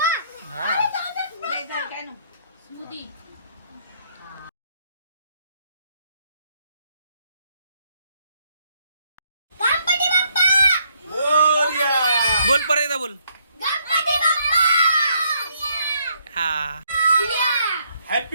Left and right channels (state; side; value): inverted; both; correlation -0.71